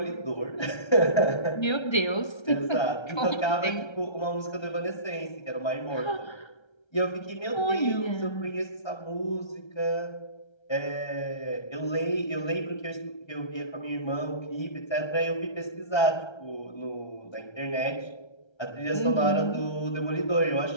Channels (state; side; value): late; right; 1.3 ms